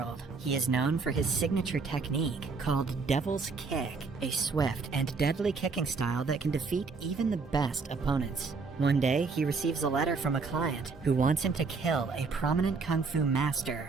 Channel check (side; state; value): left; quieter; 4.6 dB